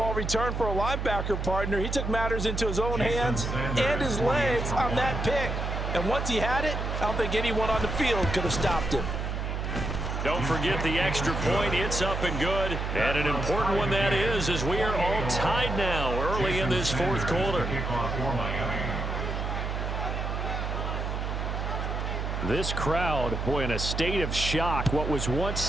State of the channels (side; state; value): right; noise; hum, 2 dB below the sound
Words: return for a linebacker partner. He took matters into his own hands and his legs on that pick. And once he had it, I don't think anyone on the field could have stopped him. Don't forget the extra point. It's up and good. And an important one that is, as we are all tied now. early in this fourth quarter. Kickoff for Miami. This crowd, boy, in a state of shock. What was once